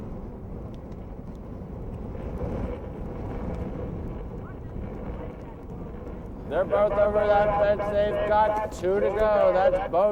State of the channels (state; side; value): identical; both; correlation 1.00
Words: They're both over that fence. They've got 2 to go. That's